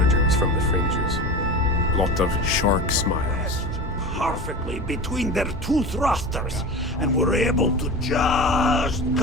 from the fringes. A lot of shark smiles. perfectly between their two thrusters, and were able to just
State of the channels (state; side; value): normal; both; correlation 0.30